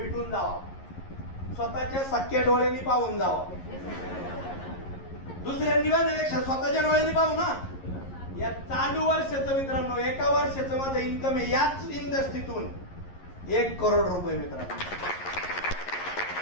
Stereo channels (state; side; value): late; right; 11 ms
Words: जावा, स्वतःच्या सख्या डोळ्यांनी पाहून जावा. दुसऱ्यांनी बघण्यापेक्षा स्वतःच्या डोळ्यांनी पाहू ना. या चालू वर्षाचं मित्रांनो, एका वर्षाचं माझं इन्कम आहे याच इंडस्ट्रीतून 1 करोड रुपये मित्रांनो.